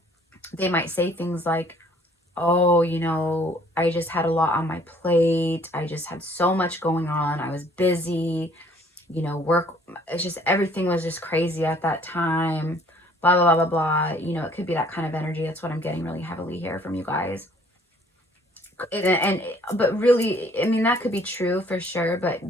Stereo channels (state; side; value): normal; both; correlation 0.58